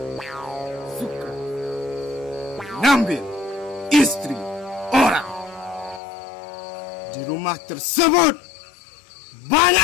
suka mengambil istri orang. Di rumah tersebut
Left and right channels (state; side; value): drops out; right; at 6.0 s